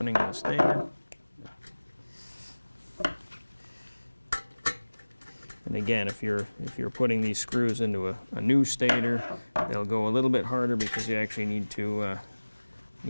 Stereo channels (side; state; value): both; inverted; correlation -1.00